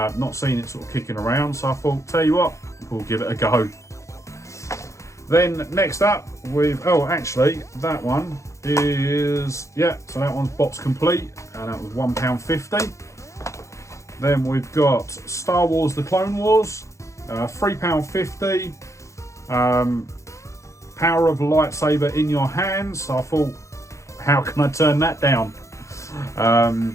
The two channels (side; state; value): right; late; 0.15 ms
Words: seen it sort of kicking around. So I thought, tell you what, we'll give it a go. Then next up, actually, that one is, yeah, so that one's box complete, and that was £1.50. Then we've got Star Wars: The Clone Wars, £3.50. Power of a lightsaber in your hands. So I thought, how can I turn that down?